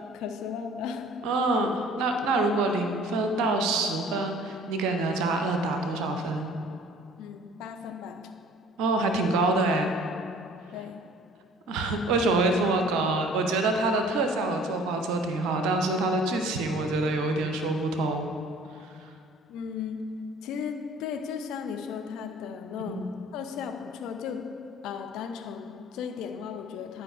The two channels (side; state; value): both; normal; correlation 0.51